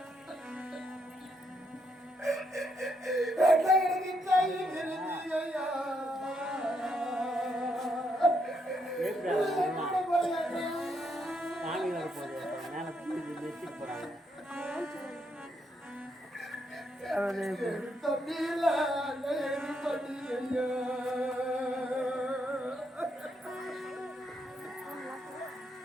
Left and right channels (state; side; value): normal; both; correlation 0.77